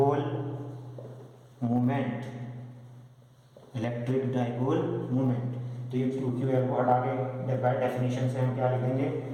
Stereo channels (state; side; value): identical; both; correlation 1.00